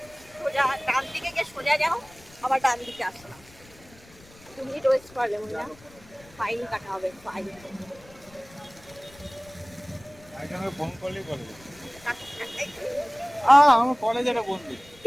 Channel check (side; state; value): left; noise; rumble, 24 dB below the sound